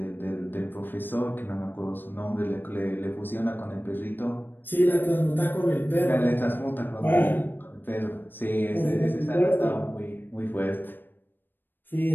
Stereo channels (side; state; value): right; late; 0.094 ms